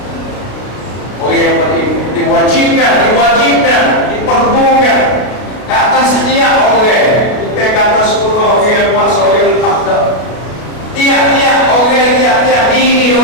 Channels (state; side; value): late; right; 33 ms